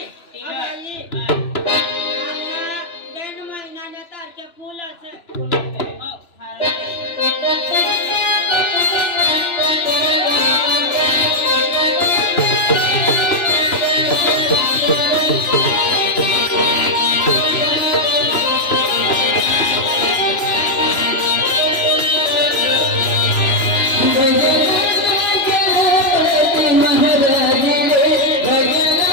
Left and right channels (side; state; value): right; late; 3.0 ms